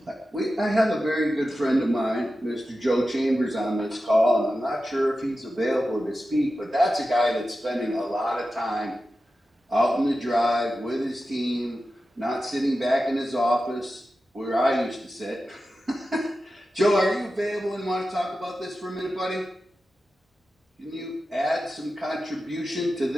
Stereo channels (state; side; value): normal; both; correlation 0.92